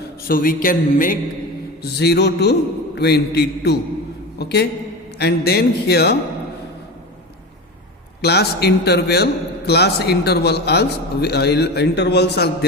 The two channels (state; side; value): normal; both; correlation 0.26